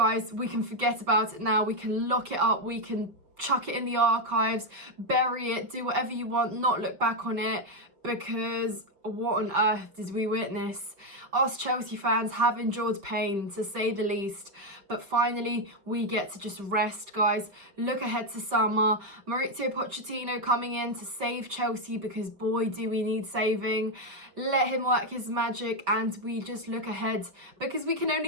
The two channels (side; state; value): left; late; 5.2 ms